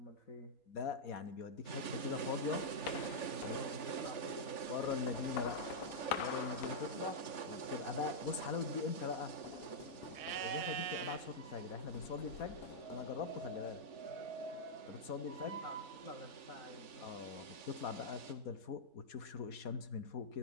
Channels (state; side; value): late; right; 3.4 ms